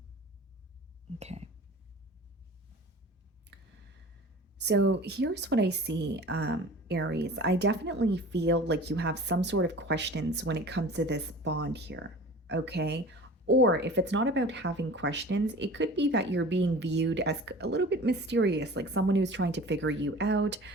Okay. So here's what I see, Aries. I definitely feel like you have some sort of questions when it comes to this bond here. Okay. Or if it's not about having questions, it could be that you're being viewed as a little bit mysterious, like someone who's trying to figure you out.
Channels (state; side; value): normal; both; correlation 0.40